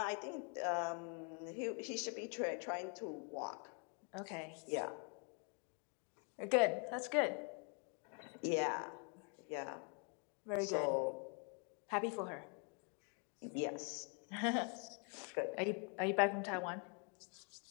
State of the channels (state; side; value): quieter; right; 37.4 dB